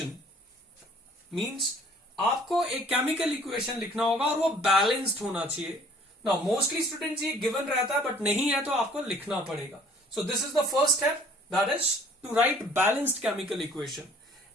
Means आपको एक chemical equation लिखना होगा और वो balanced होना चाहिए. Now mostly students ये given रहता है, but नहीं है तो आपको लिखना पड़ेगा. So this is the first step, that is to write balanced chemical equation.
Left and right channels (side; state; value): both; normal; correlation 0.55